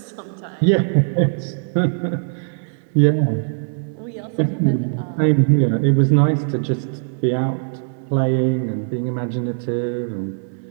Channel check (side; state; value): left; silent; digital silence